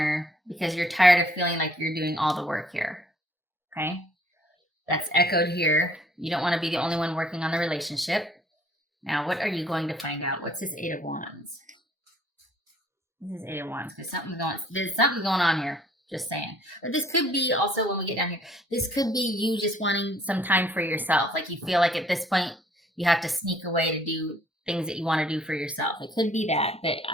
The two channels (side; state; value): both; normal; correlation 0.60